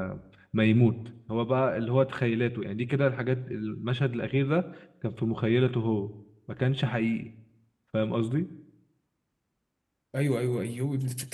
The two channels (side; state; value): both; identical; correlation 1.00